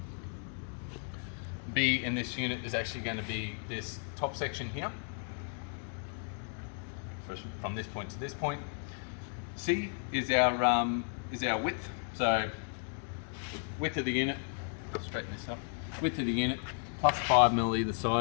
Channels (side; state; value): right; silent; 55 dB below the other